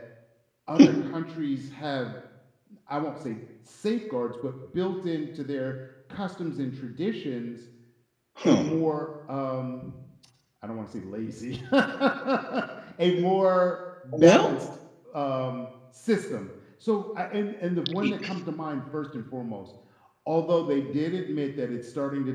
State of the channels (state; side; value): identical; both; correlation 1.00